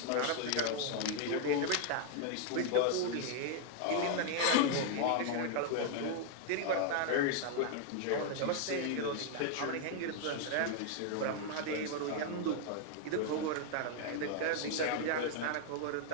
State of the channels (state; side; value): different; both; correlation 0.00